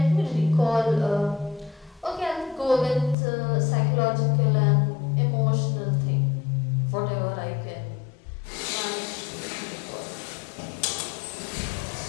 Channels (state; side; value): drops out; right; at 3.2 s